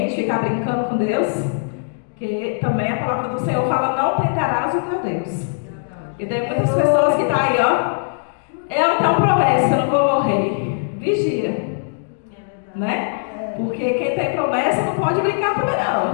ficar brincando com Deus, que também a palavra do Senhor fala, não tentarás o teu Deus. E tem muitas pessoas que estão aí, ó, eu tenho promessa, eu não vou morrer. Vigia. Né? Porque quem tem promessa não pode brincar também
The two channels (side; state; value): right; silent; digital silence